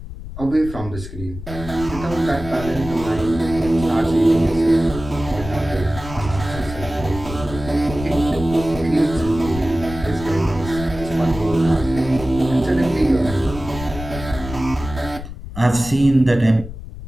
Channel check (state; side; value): noise; left; rumble, 11 dB below the sound